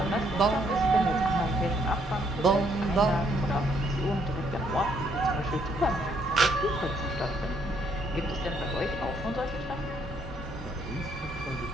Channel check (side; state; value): both; normal; correlation 0.70